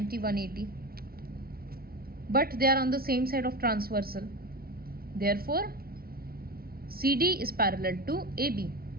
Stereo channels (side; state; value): left; late; 0.44 ms